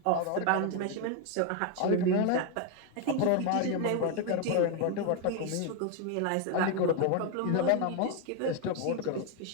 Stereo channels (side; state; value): both; different; correlation 0.01